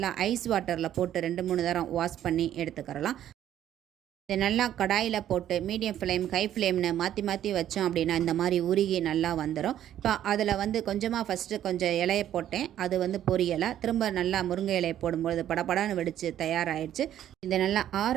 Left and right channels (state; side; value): quieter; left; 11.3 dB